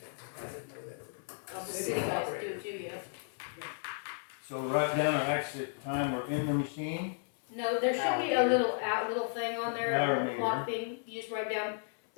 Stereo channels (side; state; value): right; silent; 55 dB below the other